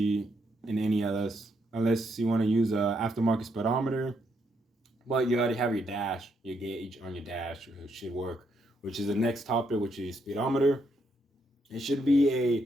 in any LS unless you want to use a aftermarket speedometer, but you already have your dash, your gauge on your dash, it should work, which is the next topic, which is speedometer. It should be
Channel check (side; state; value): both; normal; correlation 0.77